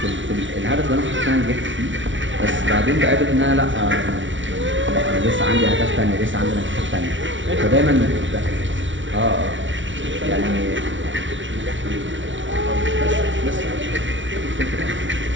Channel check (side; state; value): left; late; 0.56 ms